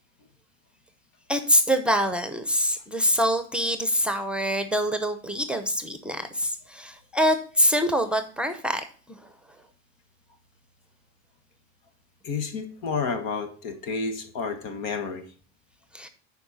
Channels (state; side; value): normal; both; correlation 0.01